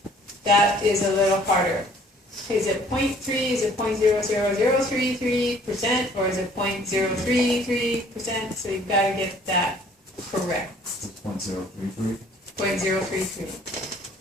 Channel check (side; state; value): both; normal; correlation 0.57